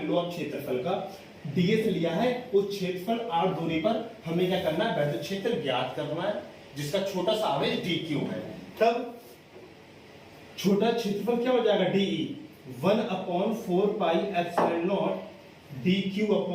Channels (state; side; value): identical; both; correlation 1.00